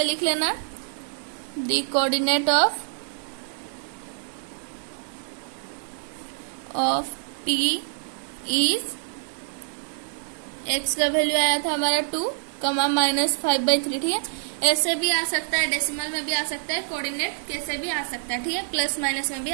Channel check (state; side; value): silent; left; digital silence